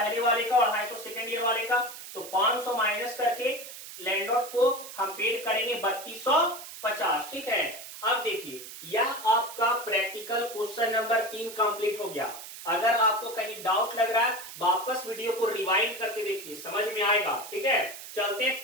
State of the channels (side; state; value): right; noise; hiss, 13 dB below the sound